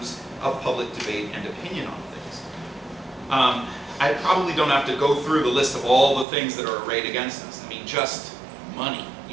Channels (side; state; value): left; drops out; at 6.2 s